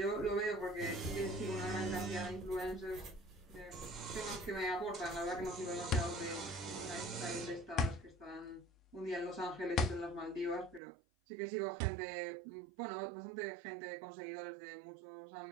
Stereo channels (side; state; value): left; drops out; at 10.8 s